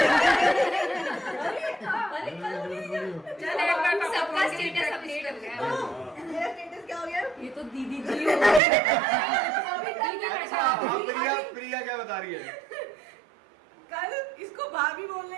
सबका स्टेटस अपडेट हो गया। ये तो दीदी जी हो हाँ, प्रिया क्या बता रही है? कल इसको भाभी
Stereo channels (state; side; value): drops out; left; at 8.6 s